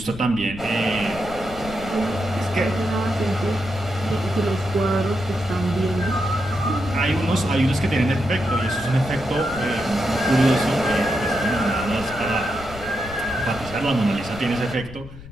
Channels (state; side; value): noise; left; rumble, 15 dB below the sound